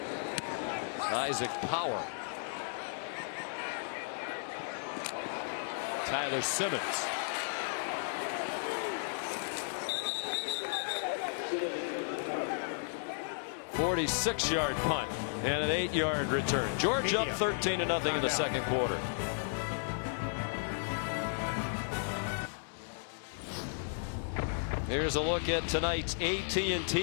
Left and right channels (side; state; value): right; silent; digital silence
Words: Isaac Power. Tyler Simmons. "46-yard punt and an 8-yard return. Georgia up 13-0 in the second quarter. Here's a look at tonight's